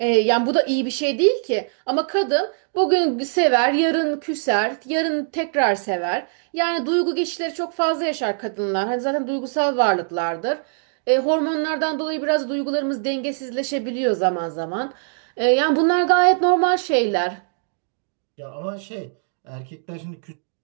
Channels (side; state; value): left; silent; digital silence